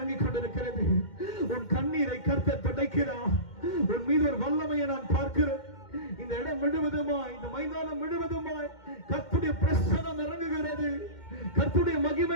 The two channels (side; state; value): right; late; 2.1 ms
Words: கொண்டிருக்கிறது. உன் கண்ணீரை கர்த்தர் துடைக்கிறார். உன் மீது ஒரு வல்லமையை நான் பார்க்கிறேன். இந்த இடம் முழுவதுமாய், இந்த மைதானம் முழுவதுமாய் கர்த்தருடைய பிரசன்னம் இறங்குகிறது, கர்த்தருடைய